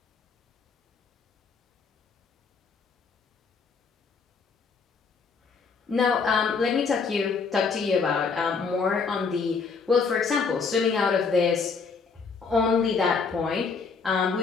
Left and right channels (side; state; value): right; quieter; 5.1 dB